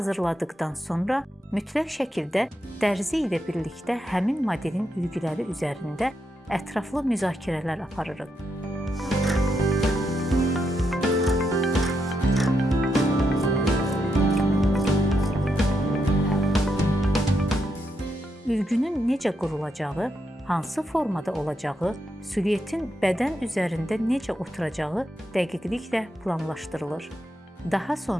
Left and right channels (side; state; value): both; normal; correlation 0.82